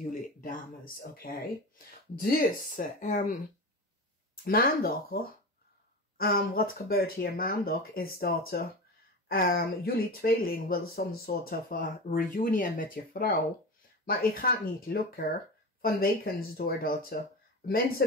dames, oké? Dus, maandag, wat gebeurt hier maandag is dat jullie tweeling wil some sort of a reunion met je vrouw. Maar het gaat niet lukken vanwege doordat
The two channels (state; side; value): normal; both; correlation 0.27